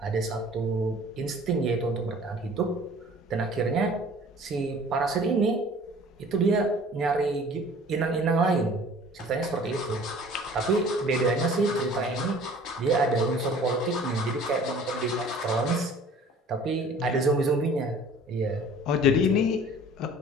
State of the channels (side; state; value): both; normal; correlation 0.49